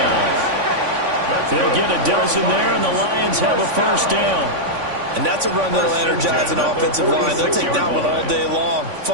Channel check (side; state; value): left; late; 3.5 ms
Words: They'll get a dozen there, and the Lions have a first down. And that's a run that'll energize an offensive line. They'll take that one all day long.